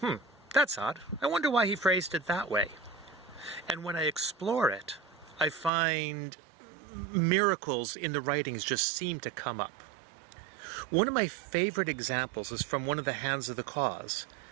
that's odd. I wonder why he phrased it that way. And when I explore it, I find miracles in the writings just seem to come up. One of my favorite examples is from one of the Hands of the Cause.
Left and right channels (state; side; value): drops out; left; at 5.7 s